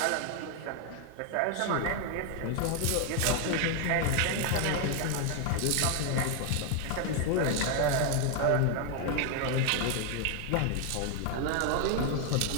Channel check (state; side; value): different; both; correlation 0.00